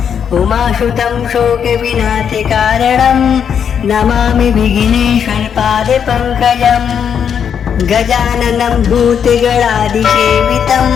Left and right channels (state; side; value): quieter; right; 7.8 dB